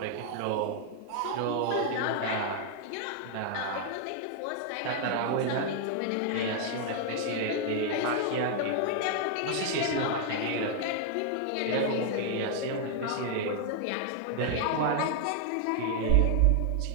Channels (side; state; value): both; different; correlation 0.00